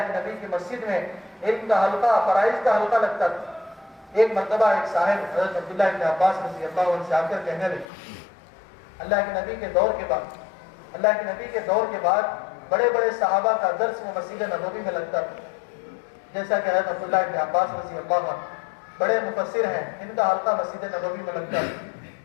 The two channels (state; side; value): drops out; right; at 7.9 s